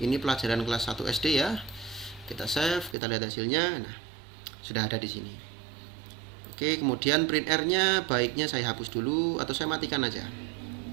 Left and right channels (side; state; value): left; drops out; at 3.0 s